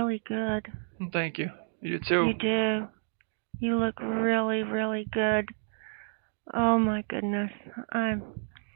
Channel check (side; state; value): left; silent; digital silence